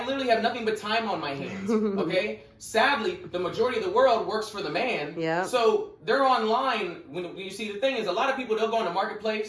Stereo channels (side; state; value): both; identical; correlation 1.00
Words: literally have nothing but time on my hands, okay? Sadly, the majority of the world works for the man. So they're online. When you see, the thing is, a lot of people, they'll go on the